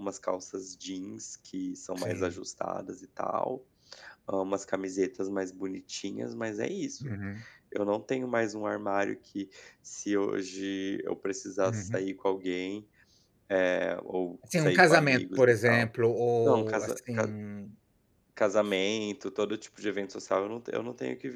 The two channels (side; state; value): both; identical; correlation 1.00